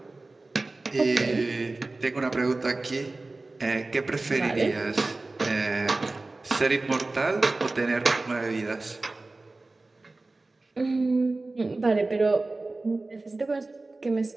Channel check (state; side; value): quieter; left; 3.2 dB